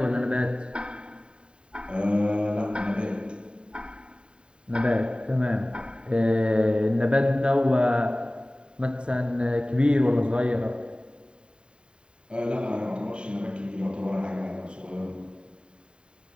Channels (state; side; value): late; left; 0.051 ms